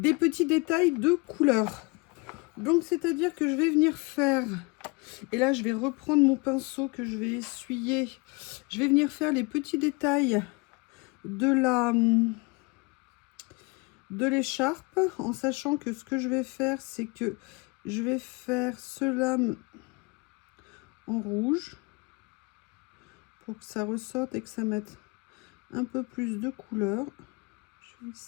petits détails de couleur. Donc, c'est-à-dire que je vais venir faire... Et là, je vais reprendre mon pinceau que je vais essuyer. Je vais venir faire les petits détails de l'écharpe, en sachant que ce que je vais faire, c'est que je vais faire ce lame en rouge pour que ça ressorte et que ça mette un peu plus de couleur. Je vais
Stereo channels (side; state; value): right; quieter; 27.7 dB